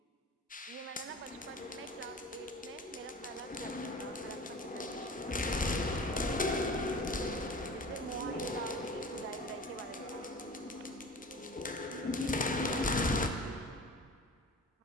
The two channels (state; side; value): normal; both; correlation 0.38